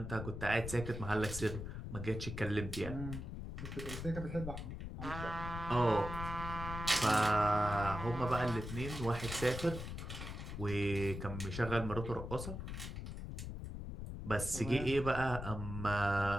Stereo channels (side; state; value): left; noise; rumble, 7 dB below the sound